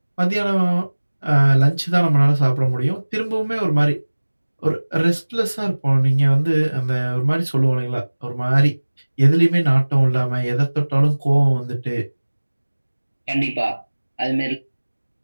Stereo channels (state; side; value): inverted; both; correlation -1.00